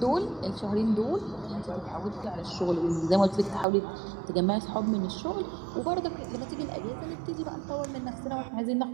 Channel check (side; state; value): left; drops out; at 3.7 s